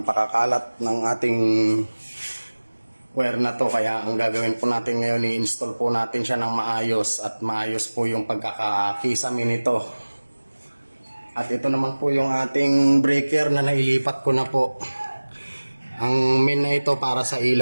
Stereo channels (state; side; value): inverted; both; correlation -1.00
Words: pakakalat ng ating wire na to. Kaya ang gagawin po natin ngayon, i-install po natin siya ng maayos at maayos po yung pagkakakisami nito. At ito naman po yung ating breaker na nailipat ko na po. Ang main na ito para sa